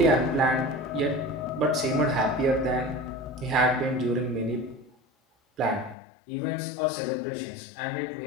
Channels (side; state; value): right; drops out; at 6.0 s